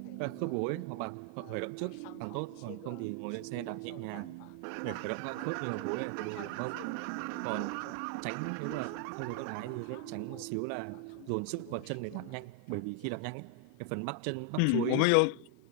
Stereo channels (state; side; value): different; both; correlation 0.00